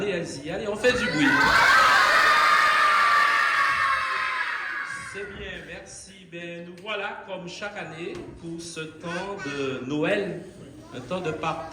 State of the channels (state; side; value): identical; both; correlation 1.00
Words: allez-y, allez, on fait du bruit. C'est bien, merci. Ben, nous voilà comme chaque année pour ce temps de Noël, un temps de